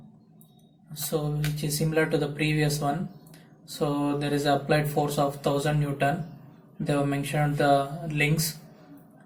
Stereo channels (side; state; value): both; identical; correlation 1.00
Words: So which is similar to the previous one. So there is a applied force of 1000 Newton. They have mentioned the links.